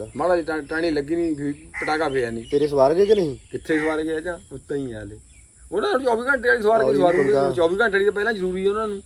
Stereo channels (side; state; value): both; identical; correlation 1.00